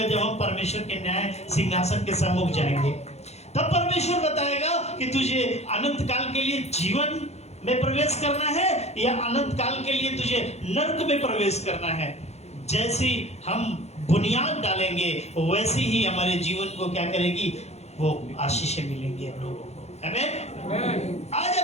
जब हम परमेश्वर के न्याय सिंहासन के सम्मुख जाएंगे। तब परमेश्वर बताएगा कि तुझे अनंत काल के लिए जीवन में प्रवेश करना है या अनंत काल के लिए तुझे नरक में प्रवेश करना है। जैसी हम बुनियाद डालेंगे वैसे ही हमारे जीवन को क्या करेगी, वो आशीषें मिलेंगी हम लोगों को। आमीन। आज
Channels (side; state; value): right; late; 0.31 ms